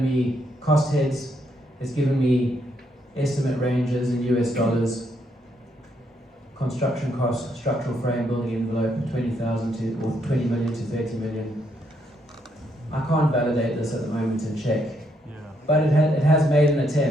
me cost heads, it's given me estimate ranges in US dollars, construction cost, structural frame, building envelope, 20,000 to, or 20 million to 30 million. I can't validate this at the moment and check, but it has made an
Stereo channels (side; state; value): both; normal; correlation 0.75